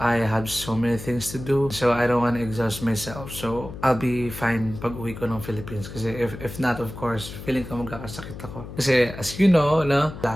have so many things to do. So I don't wanna exhaust myself. So I'll be fine pag uwi ko ng Philippines. Kasi if not, of course, feeling ko magkakasakit ako. Kasi as you know,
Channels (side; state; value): left; noise; hum, 12 dB below the sound